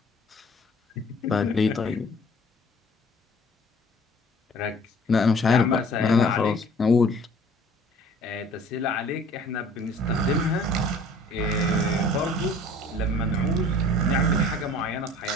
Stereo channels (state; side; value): normal; both; correlation 0.51